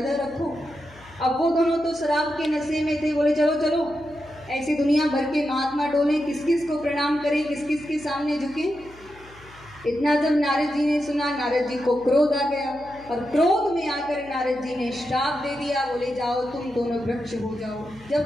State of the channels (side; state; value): left; noise; hum, 23 dB below the sound